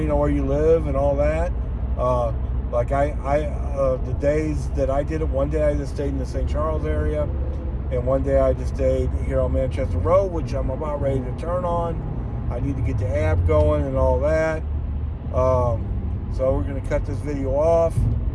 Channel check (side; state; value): both; identical; correlation 1.00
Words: on where you live and all that. Like the days that I did it, one day I just stayed in the St. Charles area, and one day I just stayed here on Manchester Road, which I'm about ready to turn on. I need to get the app going and all that. So we're going to cut this video off.